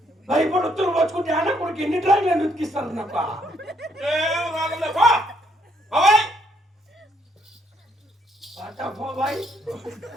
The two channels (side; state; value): both; normal; correlation 0.70